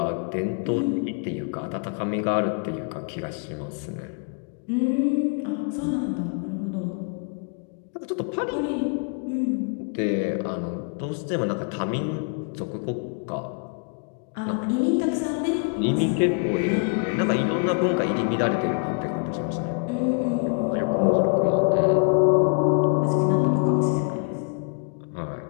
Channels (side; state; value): right; quieter; 38.3 dB